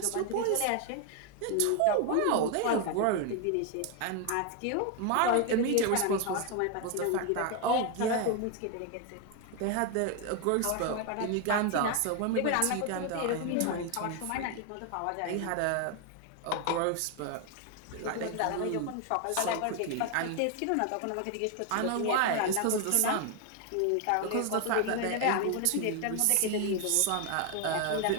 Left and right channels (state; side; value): different; both; correlation 0.01